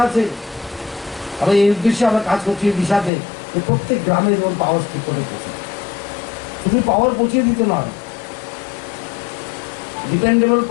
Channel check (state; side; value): drops out; right; at 3.1 s